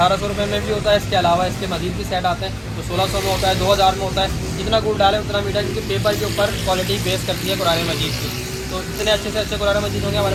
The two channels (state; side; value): identical; both; correlation 1.00